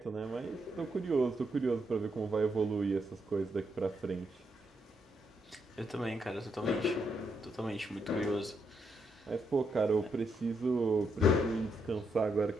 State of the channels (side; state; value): both; normal; correlation 0.79